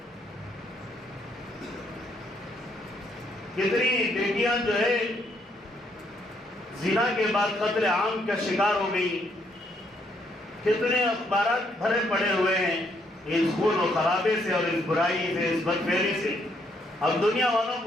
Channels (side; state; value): both; normal; correlation 0.72